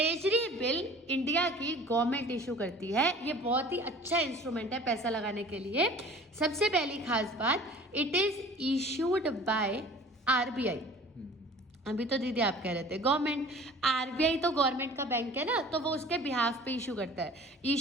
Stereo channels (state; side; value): normal; both; correlation 0.46